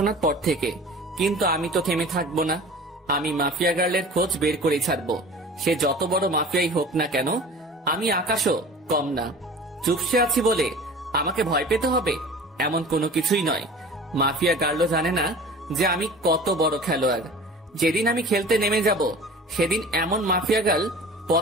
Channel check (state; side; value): normal; both; correlation 0.41